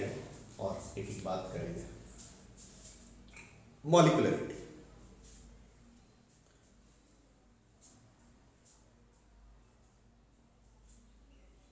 और एक एक बात करेंगे। Molecularity.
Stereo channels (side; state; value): both; identical; correlation 1.00